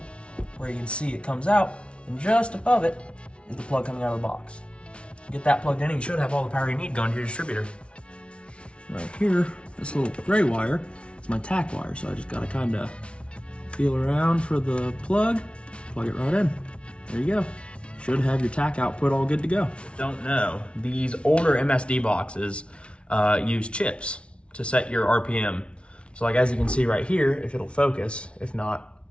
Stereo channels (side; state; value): right; late; 0.059 ms